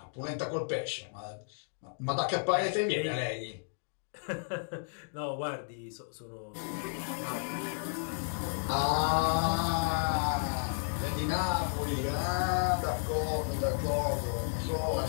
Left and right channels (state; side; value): silent; right; digital silence